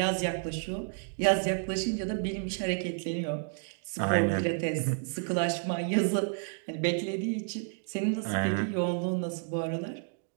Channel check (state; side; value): silent; left; 57 dB below the other